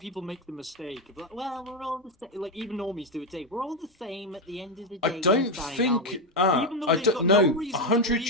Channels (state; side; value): normal; both; correlation 0.08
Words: make the mistake of like, well, we're all the same. Like even normies do it. We're all the same at the end of the day. I don't inside, think. aren't we? I don't know. 100